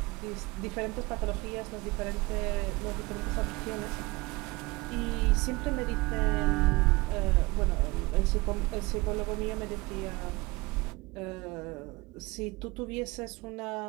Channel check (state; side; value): quieter; left; 23.2 dB